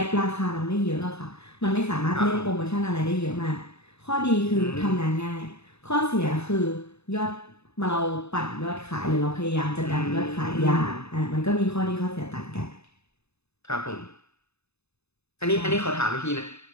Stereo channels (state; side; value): late; right; 0.80 ms